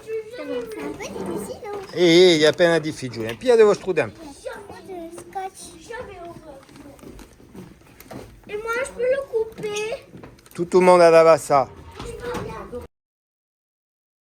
E gli appena difficile. Un piede devo strudare. Et moi, je peux le couper. Tout le monde a ça.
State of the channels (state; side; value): identical; both; correlation 1.00